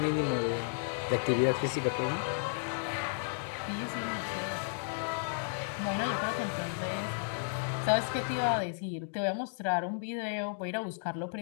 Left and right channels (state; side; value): silent; right; digital silence